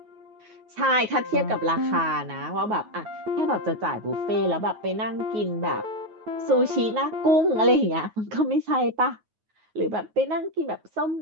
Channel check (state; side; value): late; left; 9.4 ms